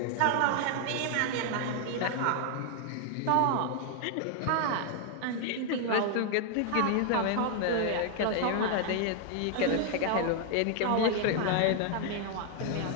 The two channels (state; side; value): different; both; correlation 0.00